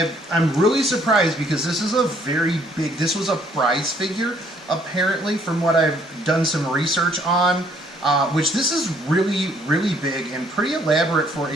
really surprised because this is a very big, this was a prize figure apparently, from what I've done some research on, which this is really, really big and pretty elaborate for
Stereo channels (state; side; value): normal; both; correlation 0.64